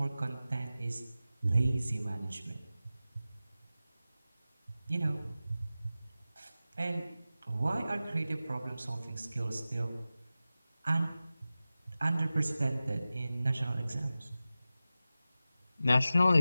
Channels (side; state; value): both; inverted; correlation -0.95